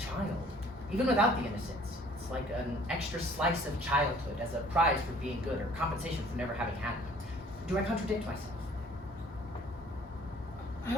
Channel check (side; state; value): both; normal; correlation 0.55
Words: even without the innocence. It's like an extra slice of childhood as a prize for being good or compensation for never having had it. Do I contradict myself? I